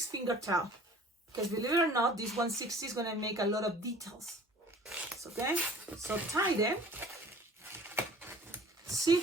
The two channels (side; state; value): both; normal; correlation 0.47